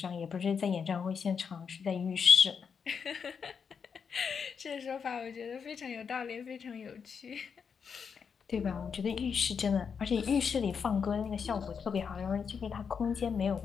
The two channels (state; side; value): quieter; right; 6.4 dB